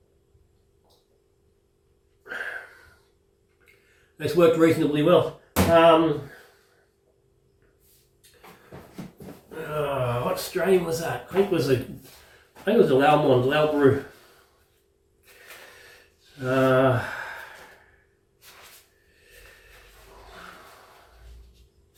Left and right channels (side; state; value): both; identical; correlation 1.00